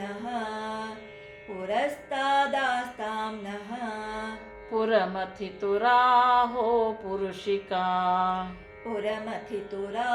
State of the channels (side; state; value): both; identical; correlation 1.00